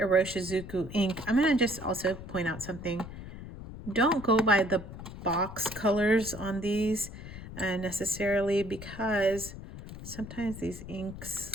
ink. I'm gonna just also point out something. Don't go by the box colors on these necessarily, because sometimes these inks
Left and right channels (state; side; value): noise; left; rumble, 12 dB below the sound